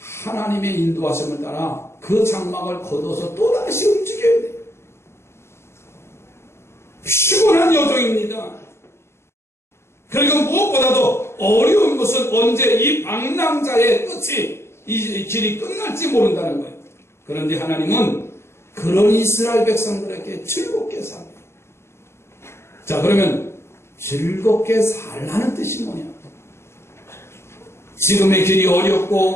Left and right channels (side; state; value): right; late; 0.13 ms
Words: 하나님의 인도하심을 따라 그 장막을 걷어서 또다시 움직여야 돼요. 피곤한 여정입니다. 그리고 무엇보다도 어려운 것은 언제 이 방랑자의 끝이 이 길이 끝날지 모른다는 거예요. 그런데 하나님은 그런 이스라엘 백성들에게 즐겁게 살아요. 자, 그러면 즐겁게 살라는 뜻이 뭐냐? 지금의 길이